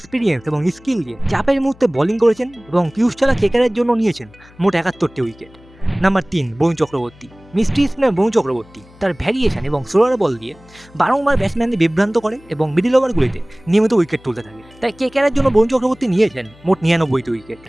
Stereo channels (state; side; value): noise; left; hum, 25 dB below the sound